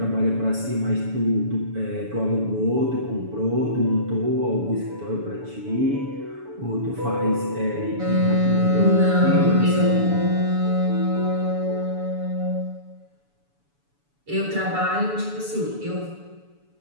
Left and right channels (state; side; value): late; left; 7.0 ms